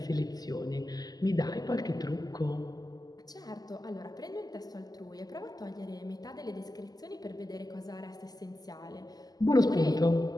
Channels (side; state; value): right; late; 0.19 ms